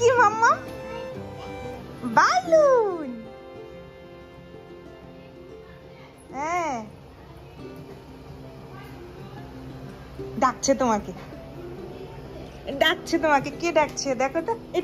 মাম্মা? বালুন। হ্যাঁ, ডাকছে তোমাকে, কে ডাকছে দেখো তো।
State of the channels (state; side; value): identical; both; correlation 1.00